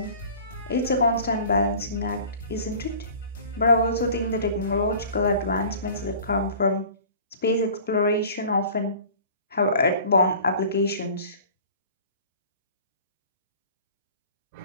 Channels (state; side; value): inverted; both; correlation -0.45